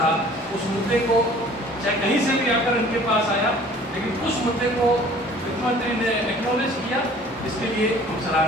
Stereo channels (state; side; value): normal; both; correlation 0.51